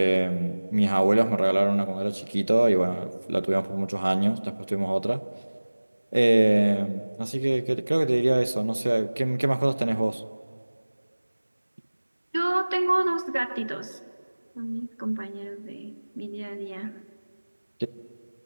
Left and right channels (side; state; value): both; inverted; correlation -1.00